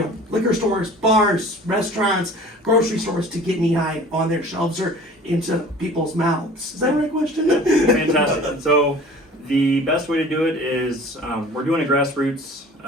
know, liquor stores, bars, restaurants, grocery stores to get knee high on their shelves or into people's mouths? Is that the right question? Fantastic. So the best way to do it is we're doing a grassroots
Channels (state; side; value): normal; both; correlation 0.45